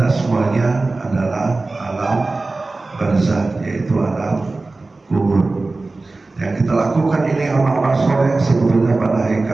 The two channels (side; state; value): left; quieter; 3.4 dB